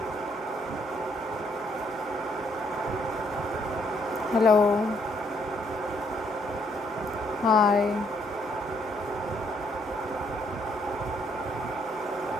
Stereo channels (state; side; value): normal; both; correlation 0.70